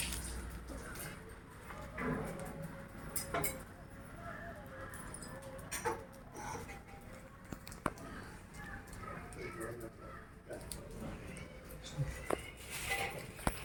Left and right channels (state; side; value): identical; both; correlation 1.00